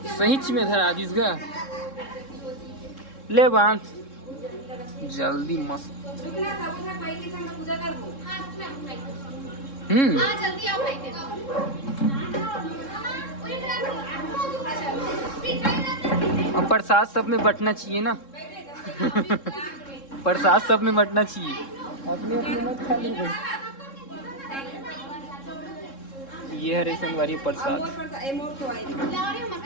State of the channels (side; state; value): right; late; 3.7 ms